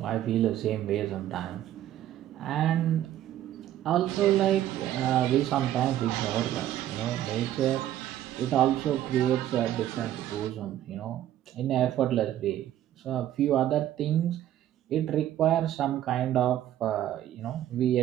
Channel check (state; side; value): quieter; left; 12.3 dB